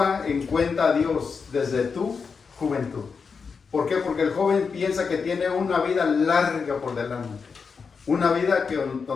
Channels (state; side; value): quieter; right; 5.4 dB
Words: en cuenta a Dios desde tu juventud. ¿Por qué? Porque el joven piensa que tiene una vida larga por delante. Una vida